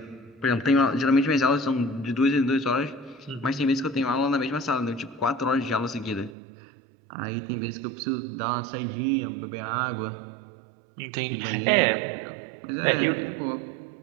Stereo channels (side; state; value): left; drops out; at 6.4 s